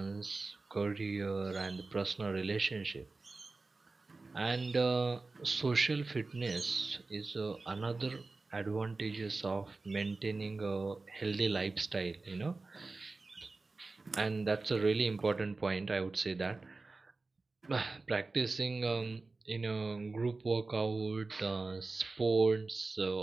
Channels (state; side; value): quieter; left; 3.6 dB